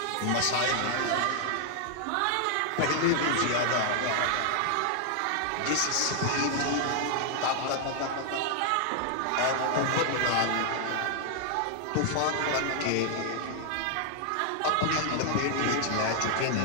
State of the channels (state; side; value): different; both; correlation 0.00